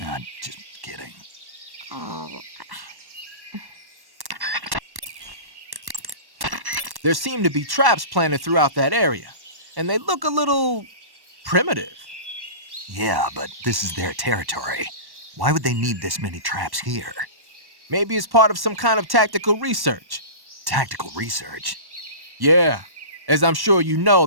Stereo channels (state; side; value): late; left; 1.1 ms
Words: I'm just kidding. Oh, There seem to be traps planted throughout that area, and they look a little primitive. Yeah, but this is their territory. Why would they need this many traps here? Maybe it's part of some kind of tactical research. Tactical research? Yeah. As I'm sure you know,